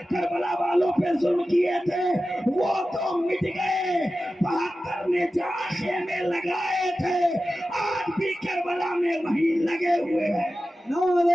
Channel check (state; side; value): normal; both; correlation 0.94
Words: کربلا والوں پہ ظلم کیے تھے وہ تو مٹ گئے۔ 72 نے جہاں خیمے لگائے تھے آج بھی کربلا میں وہی لگے ہوئے ہیں۔